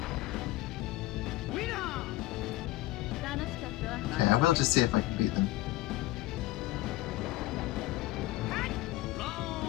Okay, I will just see if I can beat them.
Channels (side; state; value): right; quieter; 17.6 dB